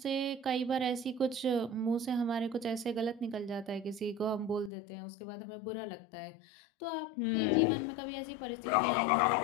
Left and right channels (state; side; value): drops out; right; at 4.7 s